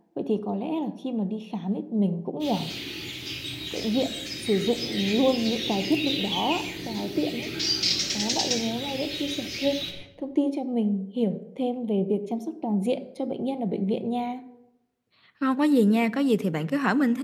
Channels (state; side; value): identical; both; correlation 1.00